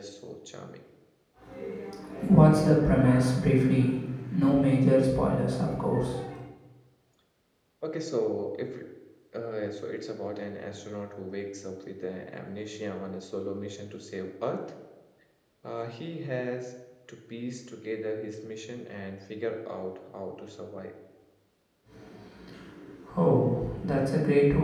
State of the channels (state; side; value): identical; both; correlation 1.00